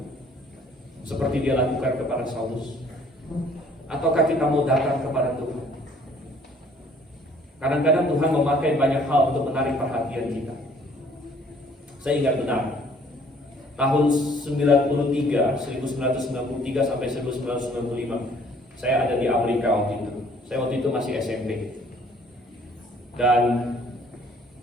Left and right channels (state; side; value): normal; both; correlation 0.58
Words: seperti dia lakukan kepada Saulus? Ataukah kita mau datang kepada Tuhan? Kadang-kadang Tuhan memakai banyak hal untuk menarik perhatian kita. Saya ingat benar, tahun 1993 sampai 1995, saya ada di Amerika waktu itu. Saya waktu itu masih SMP. Dan